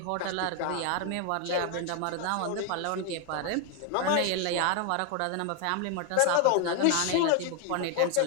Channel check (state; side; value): different; both; correlation 0.01